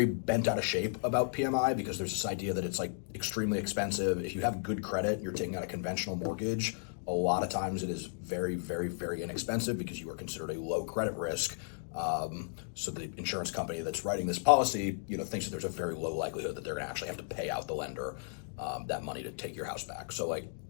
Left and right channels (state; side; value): silent; right; digital silence